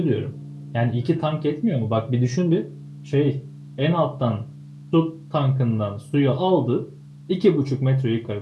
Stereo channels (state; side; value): identical; both; correlation 1.00